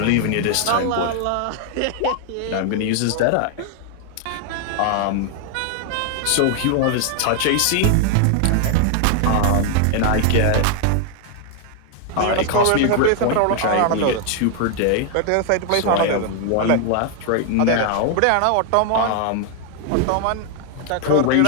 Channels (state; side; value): different; both; correlation 0.00